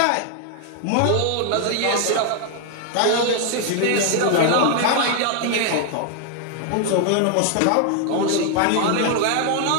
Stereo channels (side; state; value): both; different; correlation 0.00